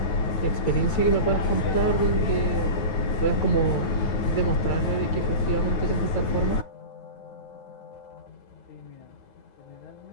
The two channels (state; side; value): late; right; 9.4 ms